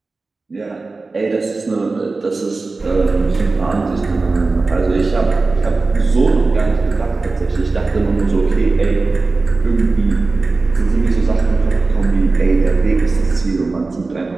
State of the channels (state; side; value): quieter; left; 3.7 dB